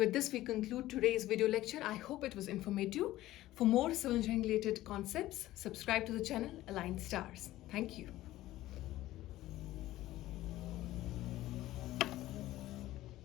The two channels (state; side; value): quieter; right; 15.6 dB